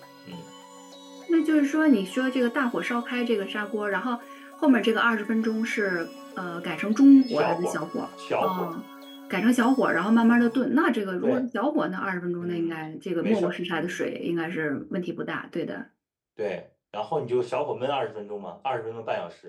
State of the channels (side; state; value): both; identical; correlation 1.00